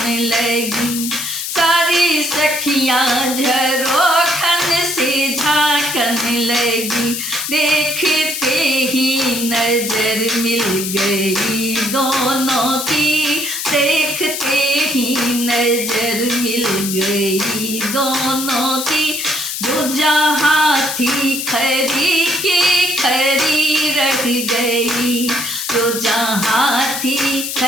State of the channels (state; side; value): noise; left; hiss, 4 dB below the sound